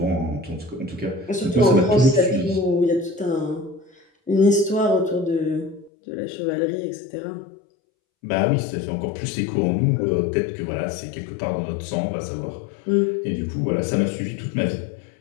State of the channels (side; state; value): right; drops out; at 5.9 s